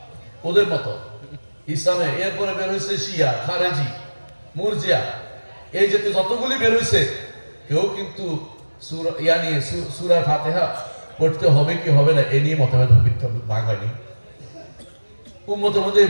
ওদের মতো ইসলামে। এরপরে বের হয়েছে শিয়া, খারেজি, মুরজিয়া, এই জাতীয় যতগুলি বের হয়েছে, কেউ কিন্তু সূরা ফাতিহা পড়তে হবে কি হবে না এ নিয়ে মতভেদ ভাগ হয়নি। উম্মতের মধ্যে এই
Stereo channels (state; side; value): inverted; both; correlation -1.00